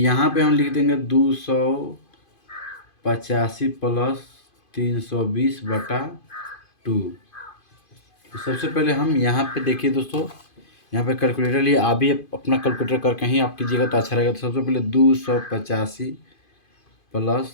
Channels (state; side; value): late; right; 2.5 ms